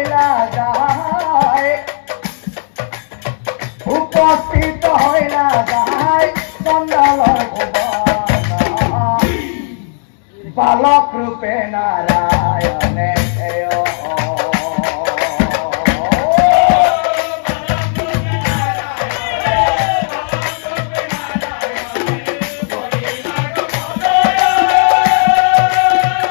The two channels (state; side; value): silent; right; 60 dB below the other